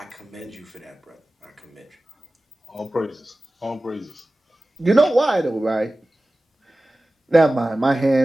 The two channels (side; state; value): both; normal; correlation 0.96